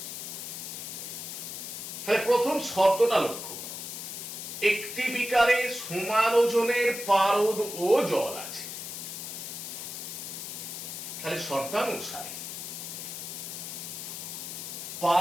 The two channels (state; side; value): noise; left; hiss, 7 dB below the sound